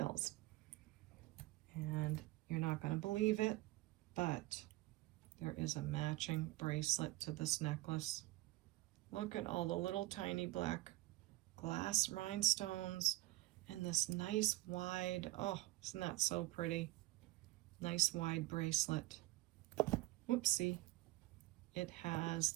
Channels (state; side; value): quieter; left; 19.1 dB